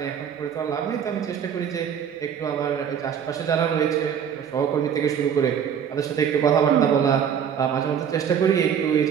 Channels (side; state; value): left; quieter; 8.1 dB